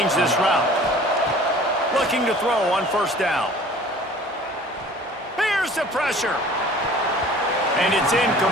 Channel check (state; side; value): normal; both; correlation 0.48